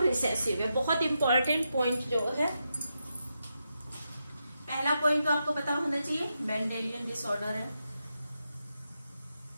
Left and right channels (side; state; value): both; inverted; correlation -0.86